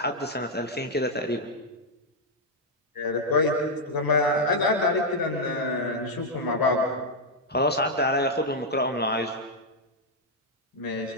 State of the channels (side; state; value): both; normal; correlation -0.02